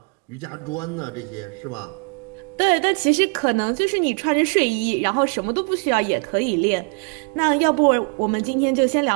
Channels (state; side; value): quieter; left; 37.2 dB